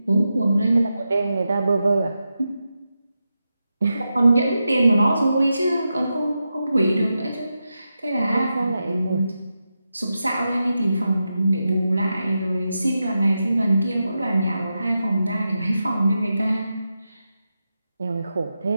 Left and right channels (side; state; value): both; inverted; correlation -0.89